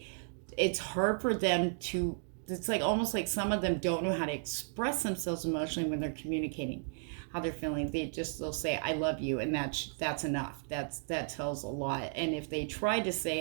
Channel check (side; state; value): left; silent; digital silence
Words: it's hard for them to, it's like almost like some of them don't know how to express themselves emotionally when they're communicating how they're feeling. They'll say I love you, and that's enough. That tells a lot. And if they try to